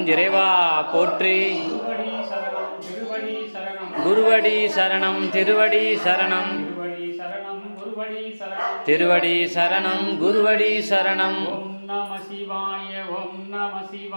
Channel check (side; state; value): both; inverted; correlation -1.00